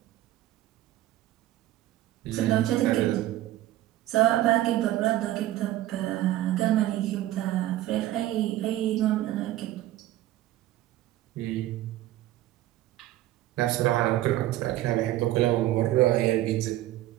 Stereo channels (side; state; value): left; quieter; 14.9 dB